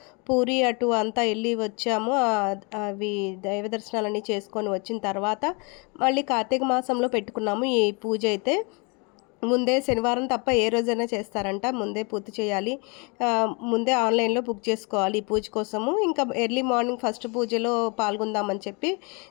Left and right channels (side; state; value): right; quieter; 32.0 dB